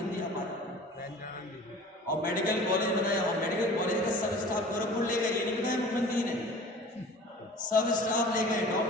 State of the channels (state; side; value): normal; both; correlation 0.43